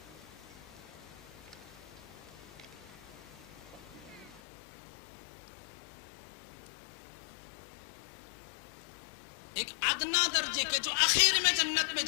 ایک ادنا درجے کے جو آخر میں جنت میں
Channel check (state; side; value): drops out; right; at 4.4 s